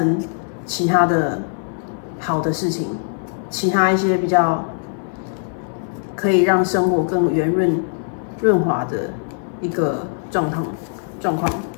其他的好的事情，其他一些比较可以让生活更圆润滑的一个状况。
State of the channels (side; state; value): right; silent; 65 dB below the other